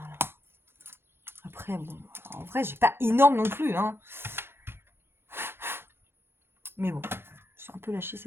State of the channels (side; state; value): left; late; 0.11 ms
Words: là. Après, bon, en vrai, j'ai pas énorme non plus, hein. Mais bon, je suis un peu lâchée